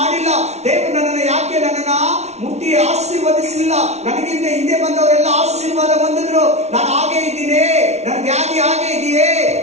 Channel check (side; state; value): left; late; 0.32 ms